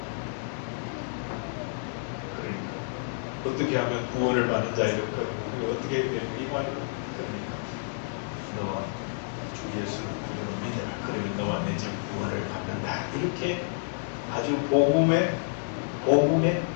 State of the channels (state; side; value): silent; right; digital silence